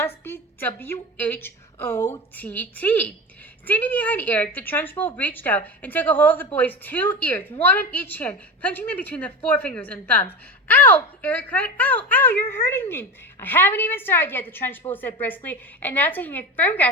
be W-H-O-T-T." Standing behind Eric, the Trunchbull reached out and took a hold of the boy's 2 ears, one in each hand, punching them between the forefingers and thumbs. "Ow!" Eric cried. "Ow! Ow! You're hurting me!" "I haven't even started yet," the Trunchbull said briskly, and now taking a firm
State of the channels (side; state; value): both; normal; correlation 0.25